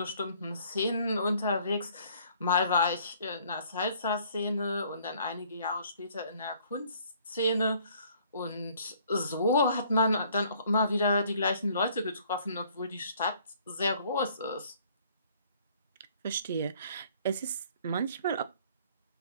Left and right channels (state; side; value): inverted; both; correlation -0.59